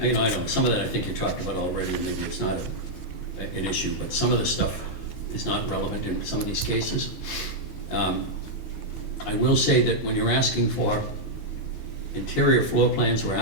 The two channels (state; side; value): late; right; 22 ms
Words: know, some of that I think you talked about already, and maybe it's not an issue, but some of this stuff is not relevant in some of these cases. I will say that when you're asking for interior floor plans are